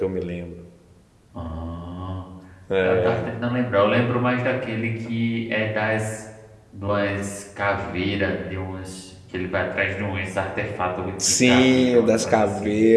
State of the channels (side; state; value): both; identical; correlation 1.00